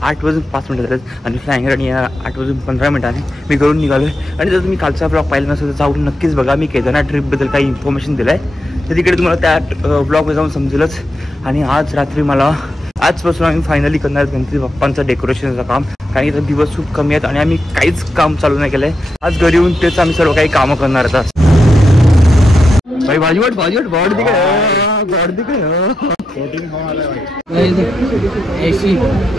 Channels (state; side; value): normal; both; correlation 0.85